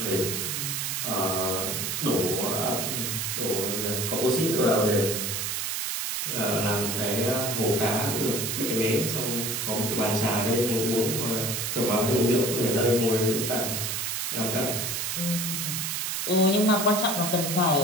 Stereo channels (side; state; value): right; noise; hiss, 1 dB below the sound